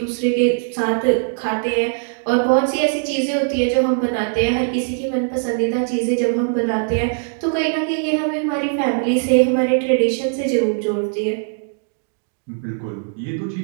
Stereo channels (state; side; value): silent; left; digital silence